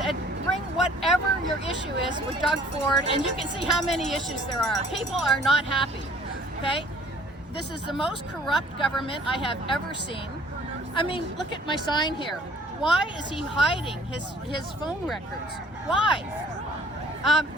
bring whatever your issue is with Doug Ford, and you can see how many issues there are. People are not happy, okay? This is the most corrupt government I have ever seen. I mean, look at my sign here. Why is he hiding his phone records? Why?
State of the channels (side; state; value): both; normal; correlation 0.54